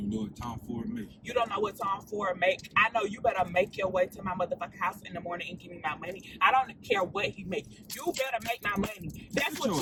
know what Tom Ford make. You don't know what Tom Ford make. I know you better make your way to my motherfucking house in the morning and give me my money. I don't care what he make. You better make my money. That's what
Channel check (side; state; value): both; identical; correlation 1.00